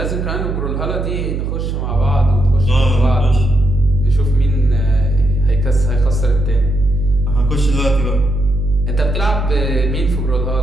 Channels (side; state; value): right; noise; hum, 3 dB below the sound